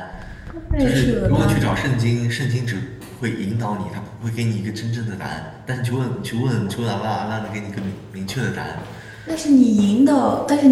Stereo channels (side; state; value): both; identical; correlation 1.00